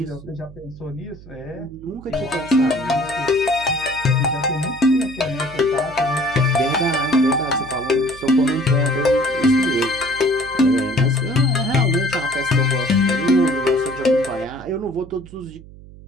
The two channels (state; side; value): noise; right; hum, 19 dB below the sound